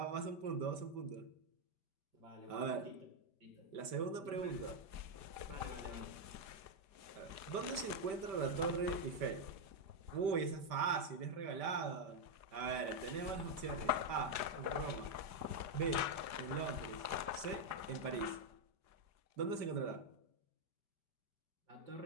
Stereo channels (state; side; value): late; left; 5.1 ms